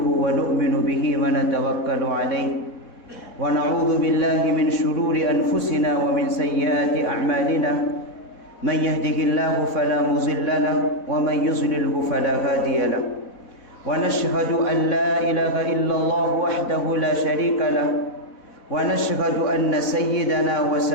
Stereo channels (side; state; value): right; late; 4.1 ms